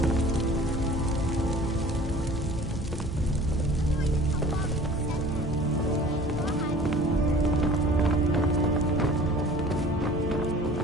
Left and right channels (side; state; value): both; normal; correlation 0.46